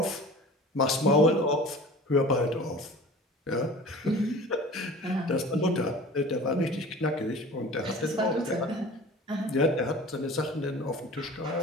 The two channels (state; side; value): normal; both; correlation 0.41